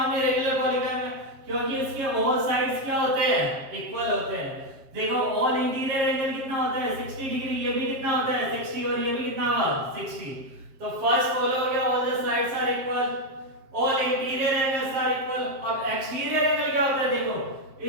रेगुलर पॉलीगन में, क्योंकि उसके ऑल साइड्स क्या होते हैं इक्वल होते हैं। देखो ऑल इंटीरियर एंगल कितना होता है 60 डिग्री, ये भी कितना होता है 60, और ये भी कितना हुआ 60। तो फर्स्ट फॉलो हो गया, all the sides are equal, all interior angles are equal. अब एक्सटीरियर एंगल क्या होता है देखो,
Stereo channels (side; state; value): left; late; 7.4 ms